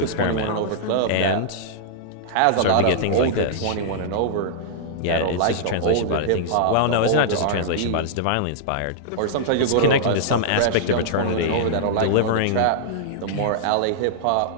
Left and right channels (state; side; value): different; both; correlation -0.02